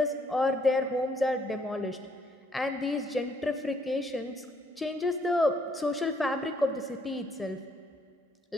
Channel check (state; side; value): normal; both; correlation 0.68